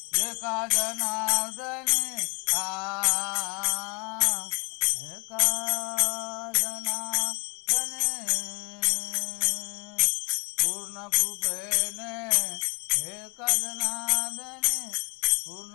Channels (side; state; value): right; quieter; 31.0 dB